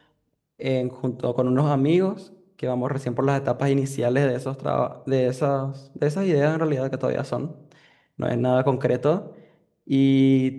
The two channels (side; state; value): both; identical; correlation 1.00